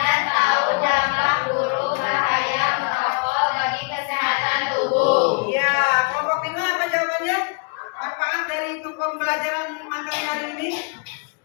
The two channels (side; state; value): right; quieter; 32.8 dB